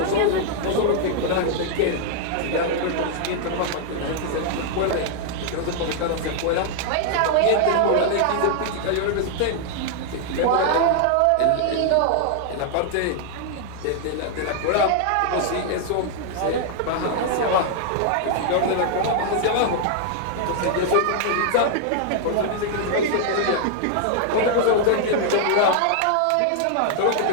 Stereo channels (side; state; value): both; different; correlation 0.00